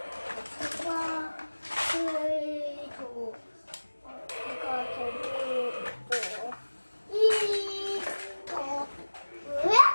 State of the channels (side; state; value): both; inverted; correlation -1.00